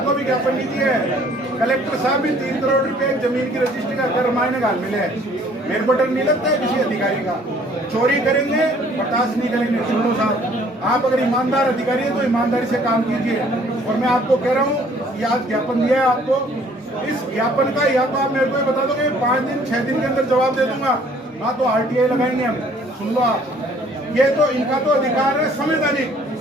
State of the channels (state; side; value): normal; both; correlation 0.58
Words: को भी ज्ञापन नहीं दिया है, कलेक्टर साहब भी 3 करोड़ रुपए जमीन की रजिस्ट्री का कर मायने घाल मिले हैं। मेरे को डर नहीं लगता है किसी अधिकारी का, चोरी करेंगे बर्दाश्त नहीं करेंगे। सुनो साहब, आप अगर ईमानदार अधिकारी हैं तो ईमानदारी से काम कीजिए। और मैं आपको कह रहा हूँ कि आज ज्ञापन दिया है आपको, इस ज्ञापन का या तो आप मेरे को बता दोगे 5 दिन 6 दिन के अंदर जवाब दे दूंगा, ना तो RTI लगाएंगे हम। सुन लो आप, ये तो इनका तो अधिकार है संवैधानिक